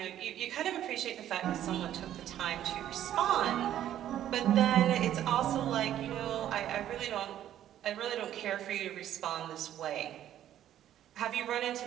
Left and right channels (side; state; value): left; quieter; 11.5 dB